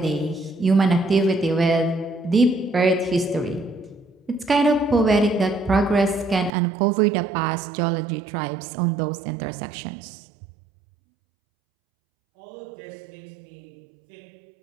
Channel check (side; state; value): left; drops out; at 6.5 s